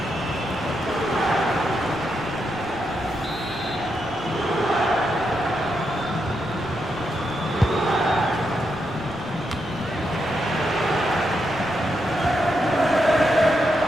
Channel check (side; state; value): left; noise; rumble, 17 dB below the sound